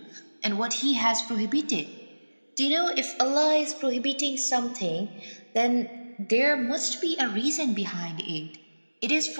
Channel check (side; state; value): both; inverted; correlation -1.00